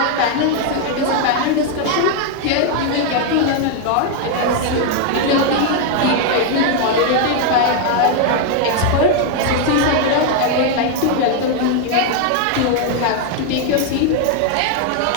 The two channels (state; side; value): different; both; correlation 0.00